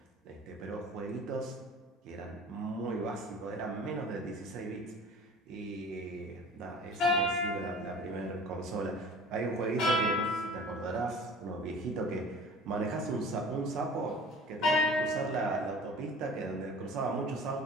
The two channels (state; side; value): normal; both; correlation 0.43